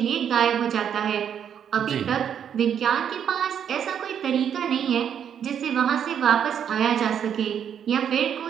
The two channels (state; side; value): quieter; left; 8.6 dB